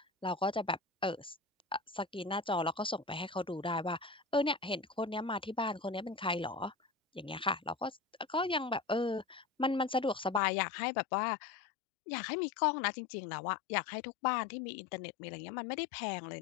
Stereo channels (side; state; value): right; drops out; at 10.4 s